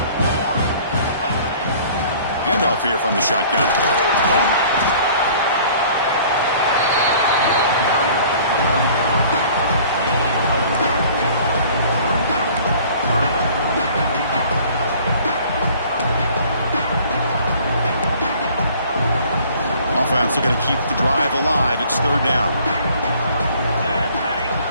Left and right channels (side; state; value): both; inverted; correlation -0.52